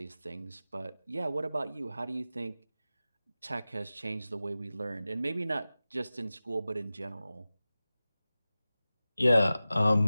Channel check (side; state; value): both; inverted; correlation -0.95